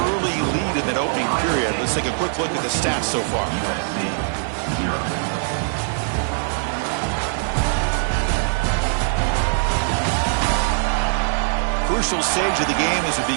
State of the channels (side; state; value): left; silent; 65 dB below the other